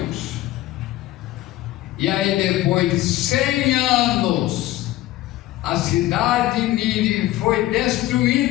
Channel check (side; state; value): right; quieter; 16.0 dB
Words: E aí, depois de 100 anos, a cidade de Nínive foi